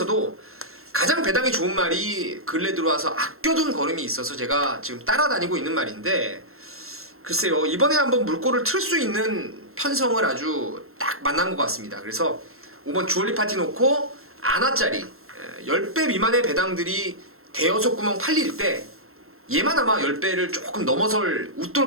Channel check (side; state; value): left; late; 0.62 ms